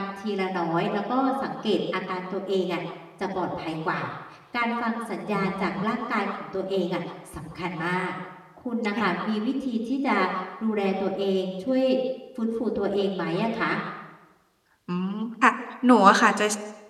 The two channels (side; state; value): both; identical; correlation 1.00